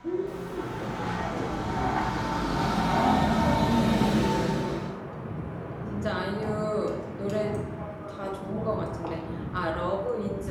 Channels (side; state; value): both; identical; correlation 1.00